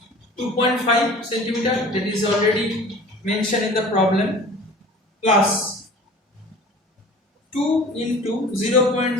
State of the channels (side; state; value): both; normal; correlation 0.43